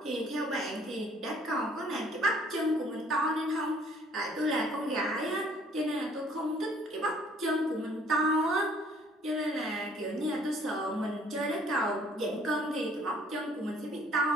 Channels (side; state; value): both; normal; correlation 0.59